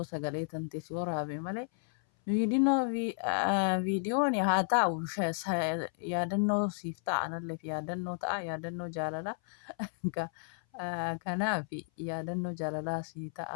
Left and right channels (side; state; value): right; silent; 56 dB below the other